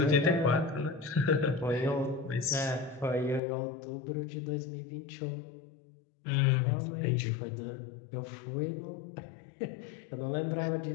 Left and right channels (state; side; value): drops out; right; at 3.4 s